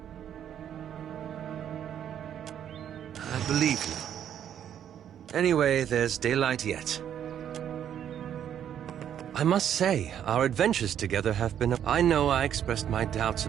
I believe you. Anyway, there's daylight yet. I must say, our adventures together have been... I know I expressed my doubts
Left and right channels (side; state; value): left; quieter; 9.7 dB